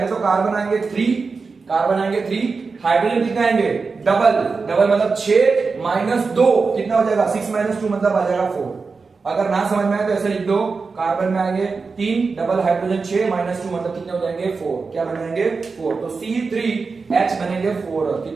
तो कार्बन आएंगे 3, हाइड्रोजन कितने आएंगे डबल मतलब 6 माइनस 2 कितना हो जाएगा 6 माइनस 2 मतलब आ जाएगा 4। अगर ना समझ में आए तो ऐसे लिख दो, कार्बन में आएंगे 3, डबल हाइड्रोजन 6 माइनस 2 मतलब कितने हो जाएंगे 4। क्या बन जाएंगे 4, तो C3H बनेंगे 4,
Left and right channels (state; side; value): quieter; left; 4.6 dB